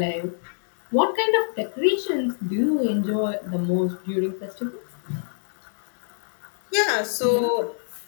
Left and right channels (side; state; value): right; silent; digital silence